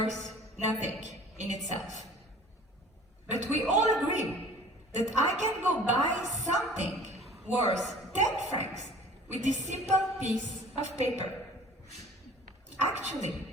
nothing in itself. But we all agree that I can go buy something worth 10 francs with this simple piece of paper. Actually,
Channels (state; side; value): normal; both; correlation 0.47